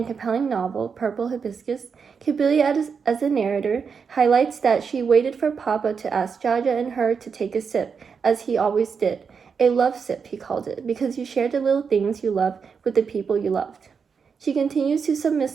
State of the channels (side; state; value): left; quieter; 6.0 dB